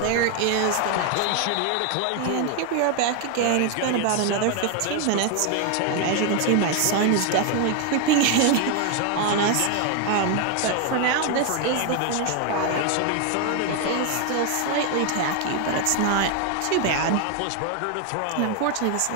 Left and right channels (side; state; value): both; different; correlation 0.01